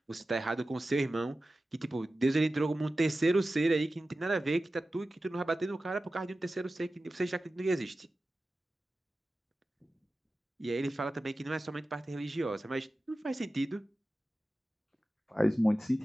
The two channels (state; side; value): normal; both; correlation 0.95